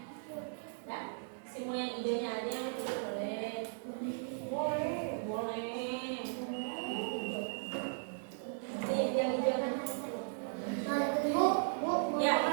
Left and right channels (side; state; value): left; silent; digital silence